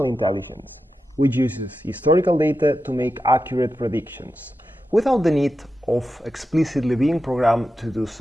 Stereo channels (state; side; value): normal; both; correlation 0.90